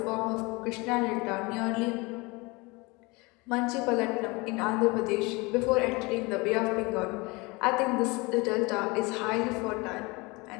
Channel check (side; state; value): right; quieter; 25.4 dB